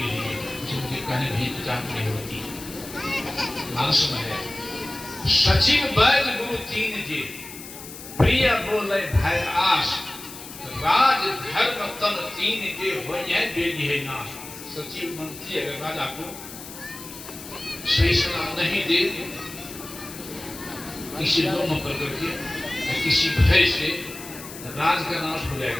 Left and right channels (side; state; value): left; noise; hiss, 13 dB below the sound